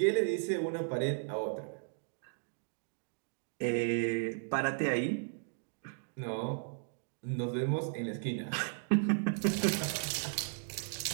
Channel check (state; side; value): silent; left; digital silence